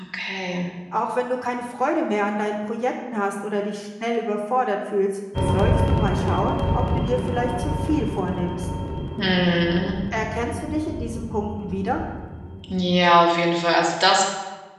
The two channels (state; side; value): identical; both; correlation 1.00